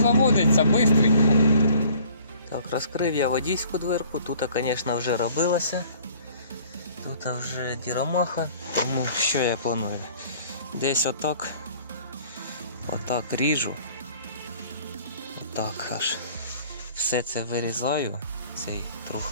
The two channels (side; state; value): both; inverted; correlation -0.53